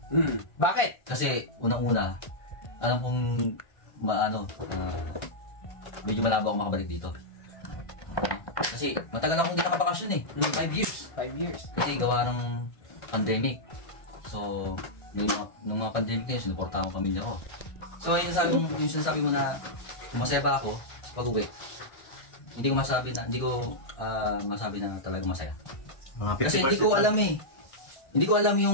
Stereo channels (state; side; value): late; right; 1.5 ms